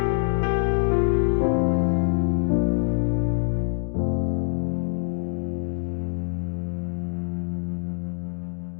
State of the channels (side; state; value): right; silent; 62 dB below the other